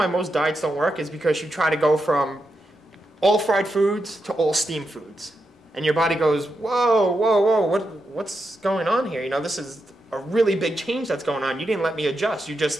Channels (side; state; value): both; normal; correlation 0.86